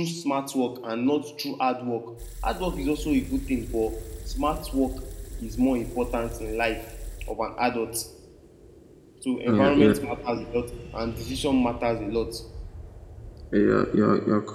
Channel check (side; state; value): both; identical; correlation 1.00